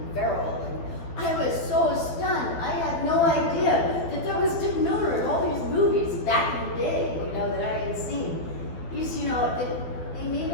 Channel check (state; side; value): late; right; 12 ms